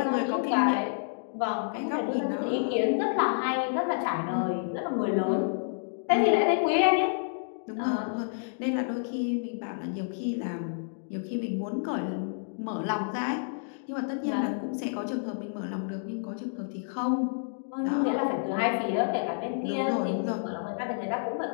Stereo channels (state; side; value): silent; right; digital silence